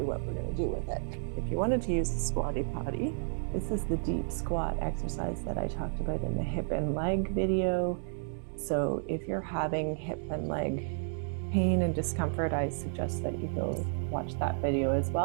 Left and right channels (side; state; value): left; silent; digital silence